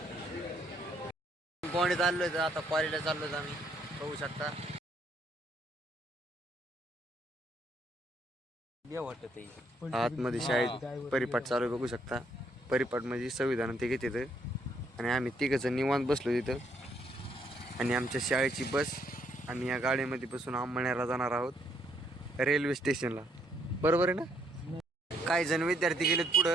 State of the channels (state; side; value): normal; both; correlation 0.71